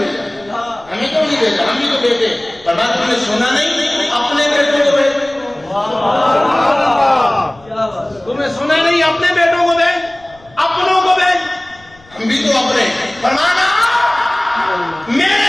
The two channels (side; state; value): left; noise; rumble, 27 dB below the sound